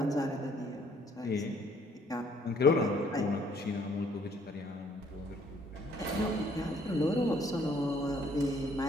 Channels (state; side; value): normal; both; correlation 0.63